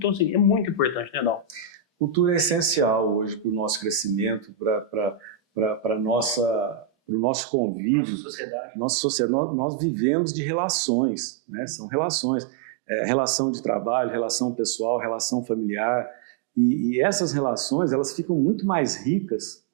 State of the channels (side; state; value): left; drops out; at 7.2 s